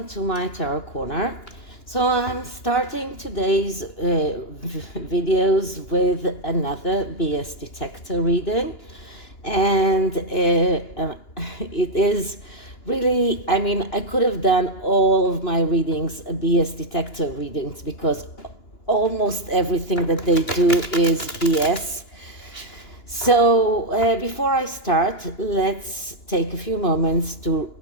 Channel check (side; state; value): right; late; 2.9 ms